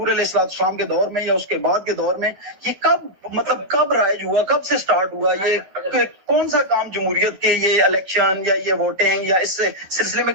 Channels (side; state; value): left; late; 11 ms